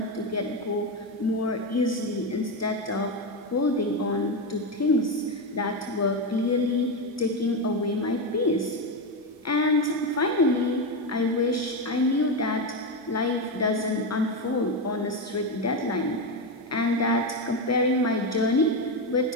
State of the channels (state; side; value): normal; both; correlation 0.11